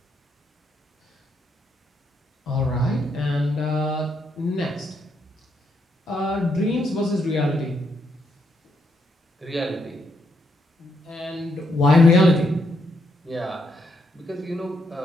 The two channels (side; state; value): both; normal; correlation 0.77